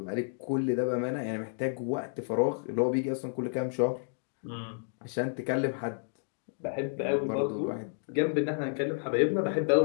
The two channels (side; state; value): right; silent; digital silence